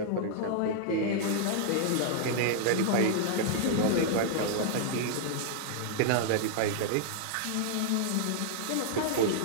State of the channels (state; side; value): different; both; correlation -0.01